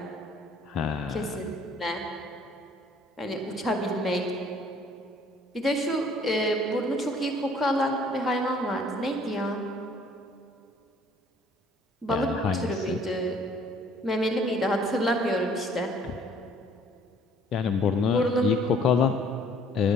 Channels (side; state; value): both; normal; correlation 0.58